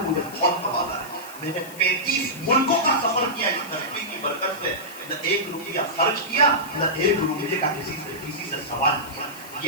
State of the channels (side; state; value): left; noise; hiss, 17 dB below the sound